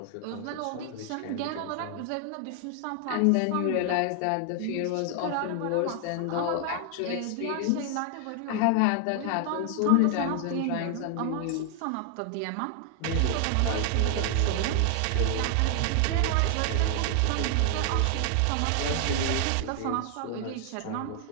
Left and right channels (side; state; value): both; different; correlation 0.00